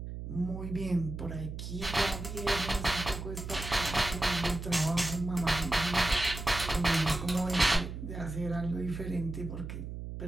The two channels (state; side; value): noise; right; hum, 7 dB below the sound